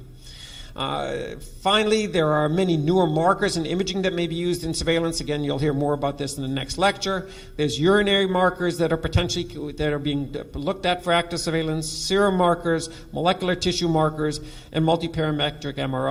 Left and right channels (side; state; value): both; identical; correlation 1.00